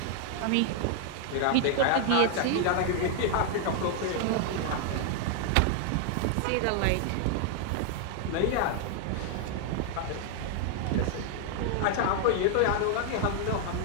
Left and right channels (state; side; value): different; both; correlation 0.00